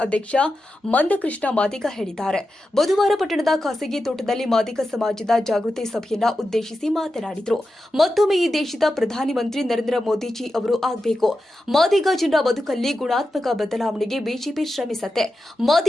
ಅಧ್ಯಕ್ಷ ಮಂದಕೃಷ್ಣ ಮಾದಿಗ ಹೇಳಿದ್ದಾರೆ. ಬುಧವಾರ ಪಟ್ಟಣದ ಖಾಸಗಿ ತೋಟದಲ್ಲಿ ಮಾದಿಗ ಸಮಾಜದ ಜಾಗೃತಿ ಸಭೆಯನ್ನ ಉದ್ದೇಶಿಸಿ ಮಾತನಾಡಿದರು. ಮತ್ತೊಮ್ಮೆ ಈ ದೇಶದ ಪ್ರಧಾನಿ ಮಂತ್ರಿ ನರೇಂದ್ರ ಮೋದಿಜಿ ಅವರು ಆಗಬೇಕು. ಮಾದಿಗ ಜನರ ಬದುಕಲ್ಲಿ ಗುಣಾತ್ಮಕ ಬದಲಾವಣೆಗೆ ಬಿಜೆಪಿ ಶ್ರಮಿಸತ್ತೆ.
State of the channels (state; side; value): normal; both; correlation 0.91